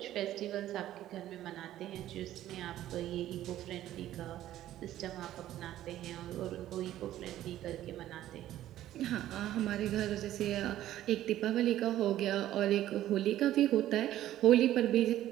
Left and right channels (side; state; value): left; quieter; 13.2 dB